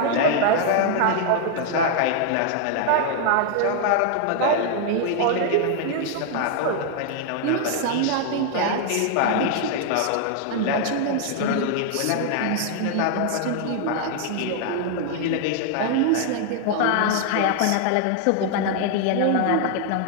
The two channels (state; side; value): different; both; correlation 0.00